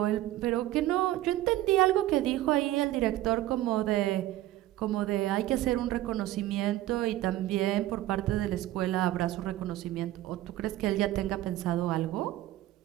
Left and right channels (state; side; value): quieter; left; 15.1 dB